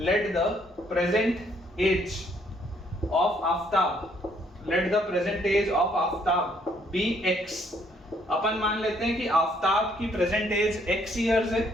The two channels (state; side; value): normal; both; correlation 0.67